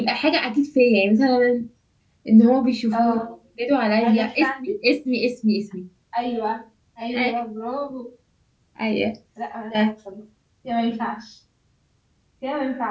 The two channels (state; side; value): identical; both; correlation 1.00